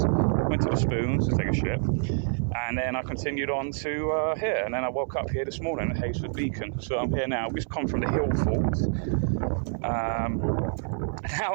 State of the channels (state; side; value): silent; left; 60 dB below the other